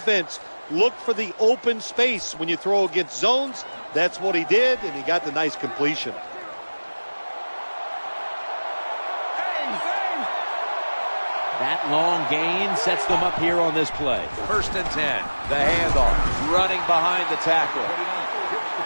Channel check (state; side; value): inverted; both; correlation -1.00